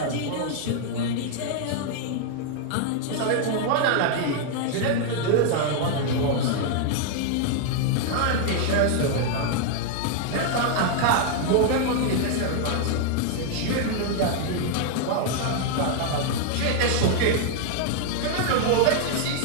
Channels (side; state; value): both; different; correlation 0.00